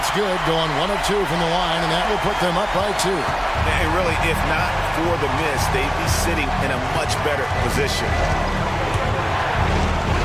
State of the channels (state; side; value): identical; both; correlation 1.00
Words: good, going 1 of 2 from the line, and that will put them up by 2. And really, if not for the miss, they'd be sitting in a much better position.